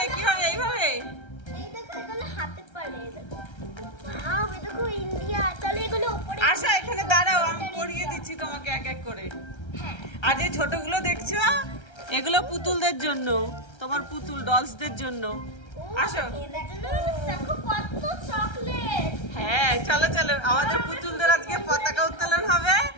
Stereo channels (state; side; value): late; right; 1.3 ms